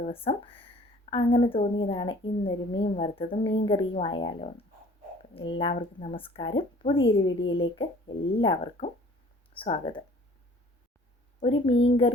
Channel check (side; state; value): both; normal; correlation 0.52